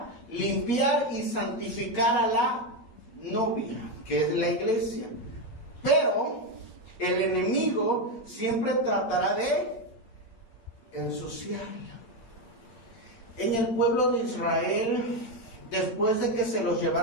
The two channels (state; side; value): late; right; 8.3 ms